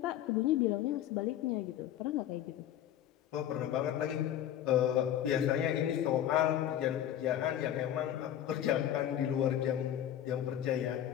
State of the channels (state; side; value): quieter; right; 11.2 dB